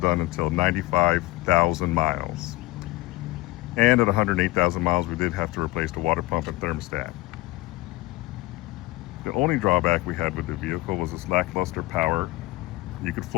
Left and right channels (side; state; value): right; quieter; 19.8 dB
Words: done until 95,000 miles. And at 108,000 miles, we did have to replace the water pump and thermostat. The only drawback we had with the vehicle was its lackluster power. You could